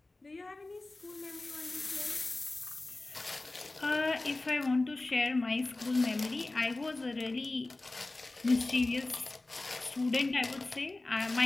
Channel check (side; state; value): right; quieter; 3.0 dB